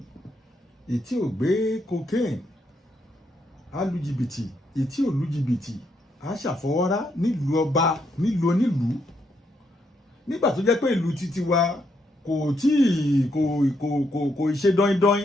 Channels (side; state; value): both; normal; correlation 0.77